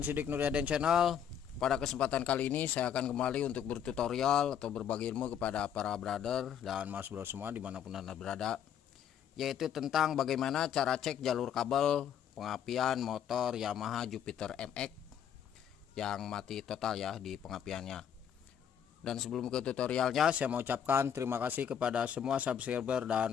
Nuryaden Channel. Pada kesempatan kali ini saya akan kembali untuk bertutorial atau berbagi ilmu kepada para brother dan mas bro semua dimanapun anda berada, yaitu tentang bagaimana cara cek jalur kabel pengapian motor Yamaha Jupiter MX yang mati total ya di pengapiannya. Dan sebelum ke tutorialnya, saya mau ucapkan terima kasih kepada semua subscriber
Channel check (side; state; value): right; quieter; 8.8 dB